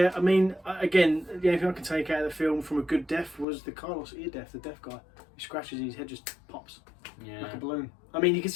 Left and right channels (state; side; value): drops out; right; at 3.5 s